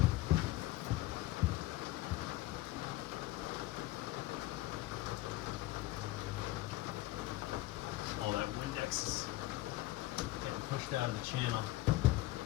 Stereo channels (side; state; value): right; quieter; 17.2 dB